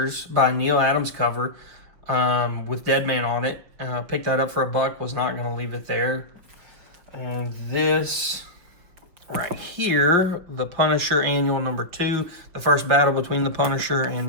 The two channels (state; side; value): late; left; 5.7 ms